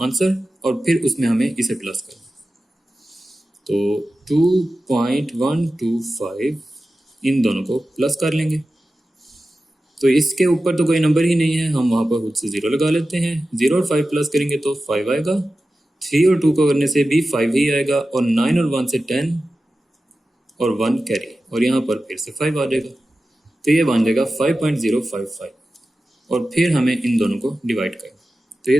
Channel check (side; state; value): both; normal; correlation 0.94